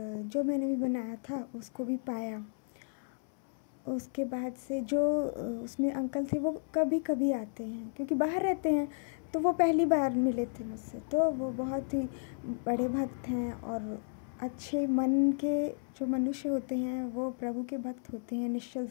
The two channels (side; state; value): right; silent; 56 dB below the other